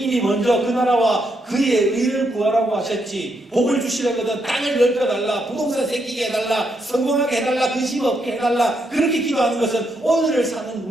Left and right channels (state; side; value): normal; both; correlation 0.78